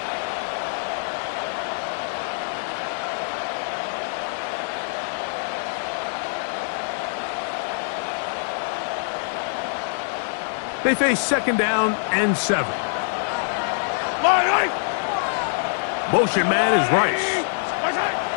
They face second down and 7. Motion man is Rice.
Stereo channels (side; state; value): right; silent; 62 dB below the other